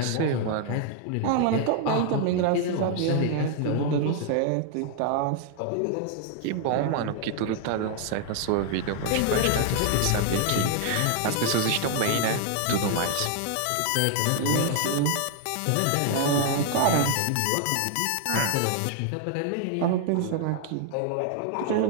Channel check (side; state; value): both; different; correlation 0.00